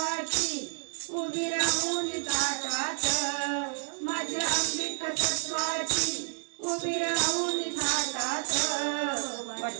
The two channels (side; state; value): left; silent; digital silence